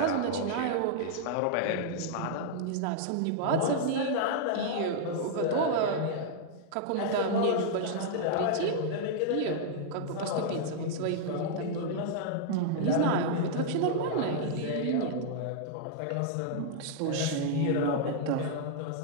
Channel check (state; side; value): different; both; correlation -0.01